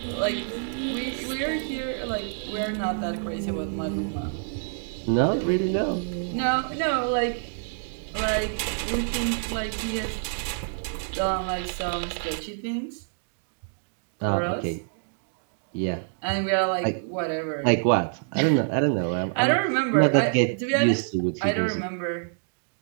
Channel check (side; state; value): left; silent; digital silence